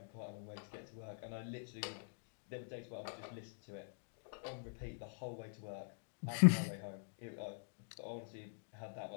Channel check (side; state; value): right; silent; digital silence